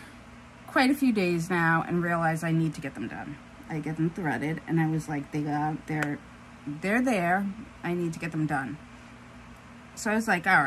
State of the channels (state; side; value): identical; both; correlation 1.00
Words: quite a few days now and realized I need to get them done. I get them threaded, and I was like, they're there. I need to get them done. So I was like, all